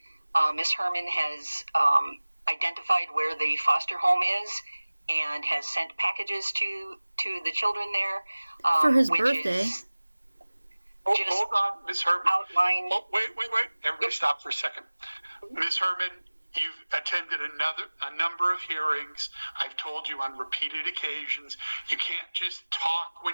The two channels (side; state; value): both; inverted; correlation -1.00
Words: Ms. Herman has identified where the foster home is and has sent packages to the children there. For his birthday. Hold on, Ms. Herman. Outline. Oh, wait. Everybody stop for a second. Ms. Herman, you've attended a number of hearings. I've told you on repeated occasions, you can't just talk